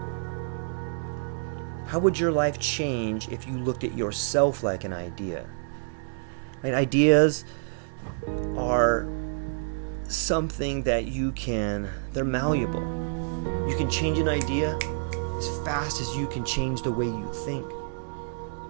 How would your life change if you looked at yourself like an idea? Right? Ideas are something that they're malleable. You can change an idea as fast as you can change the way you think.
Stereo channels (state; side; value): silent; left; 59 dB below the other